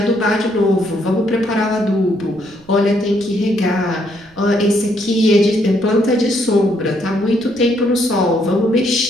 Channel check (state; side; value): noise; right; rumble, 29 dB below the sound